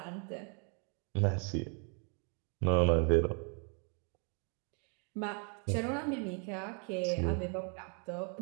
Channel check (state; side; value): quieter; left; 39.2 dB